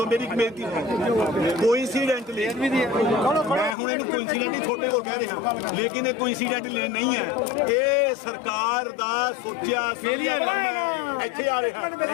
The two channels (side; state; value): right; drops out; at 3.8 s